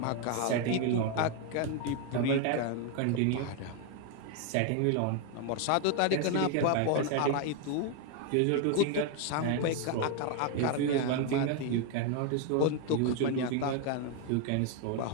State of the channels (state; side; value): different; both; correlation 0.01